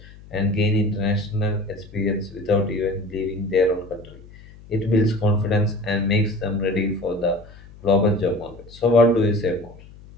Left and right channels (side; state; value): left; noise; hum, 20 dB below the sound